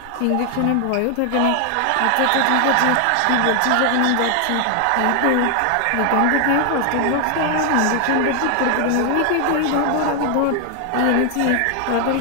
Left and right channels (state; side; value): different; both; correlation 0.00